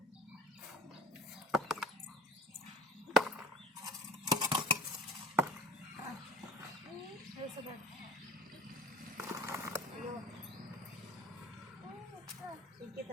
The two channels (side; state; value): both; normal; correlation 0.43